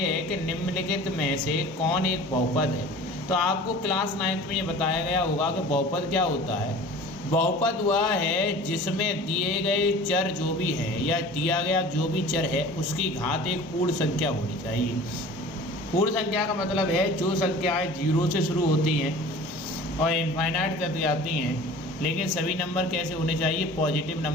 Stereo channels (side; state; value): both; normal; correlation 0.42